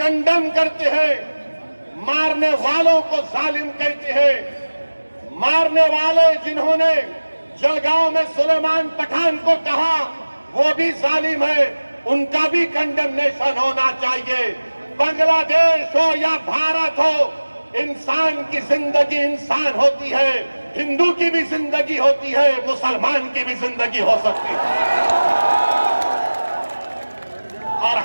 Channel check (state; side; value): inverted; both; correlation -1.00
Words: करते हैं, मारने वालों को जालिम कहते हैं। मारने वाले जिन्होंने जलगांव में सुलेमान पठान को कहा वो भी जालिम है, उनका भी कंडेमनेशन होना चाहिए। बांग्लादेश हो या भारत हो, इंसान की जिंदगी इंसान होती है, हिंदू की भी जिंदगी होती है, मुसलमान की भी जिंदगी हो सकती है। और